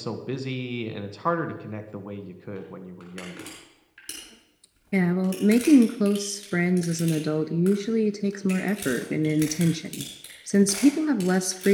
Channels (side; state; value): both; identical; correlation 1.00